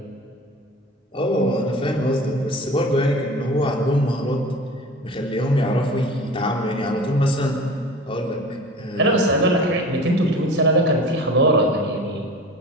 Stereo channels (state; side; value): normal; both; correlation 0.39